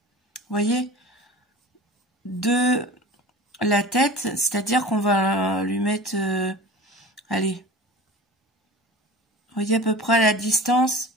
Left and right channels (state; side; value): normal; both; correlation 0.38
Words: Vous voyez, de la tête, c'est-à-dire qu'on va lui mettre, allez, vous voyez à peu près la distance.